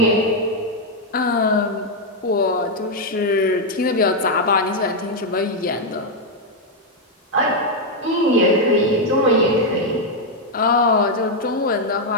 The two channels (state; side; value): normal; both; correlation 0.00